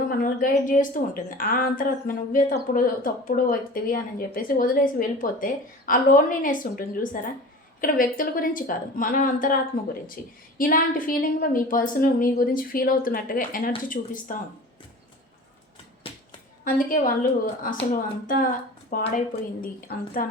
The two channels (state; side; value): normal; both; correlation 0.38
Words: మనల్ని గైడ్ చేస్తూ ఉంటుంది. ఆ అంతరాత్మ నువ్వే తప్పుడు వ్యక్తివి అని చెప్పేసి వదిలేసి వెళ్ళిపోతే ఆ లోన్లీనెస్ ఉంటుంది చూసారా. ఇక్కడ వ్యక్తుల గురించి కాదు, మన అంతరాత్మ గురించి. ఇలాంటి ఫీలింగ్లో మీ పర్సన్ మీ గురించి ఫీల్ అవుతున్నట్టుగా ఎనర్జీ చూపిస్తూ ఉంది. అందుకే వాళ్ళు అసలు అంతా పాడైపోయింది, అంతా